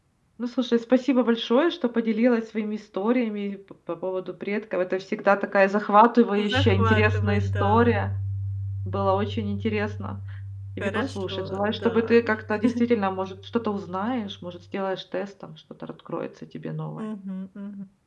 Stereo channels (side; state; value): both; identical; correlation 1.00